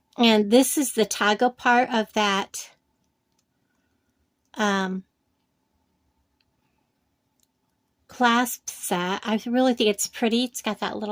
And this is the toggle part of that clasp set. I really think it's pretty. It's got that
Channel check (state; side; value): identical; both; correlation 1.00